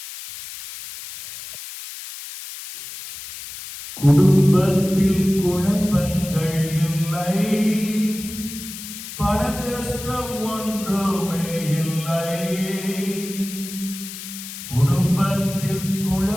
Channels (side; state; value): left; noise; hiss, 11 dB below the sound